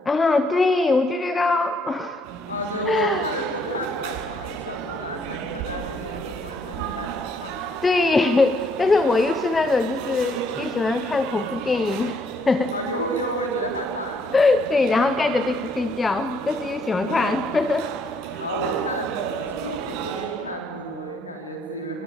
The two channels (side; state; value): both; normal; correlation 0.68